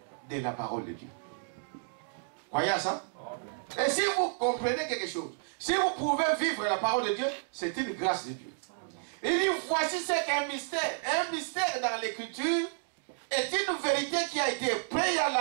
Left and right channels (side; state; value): left; silent; digital silence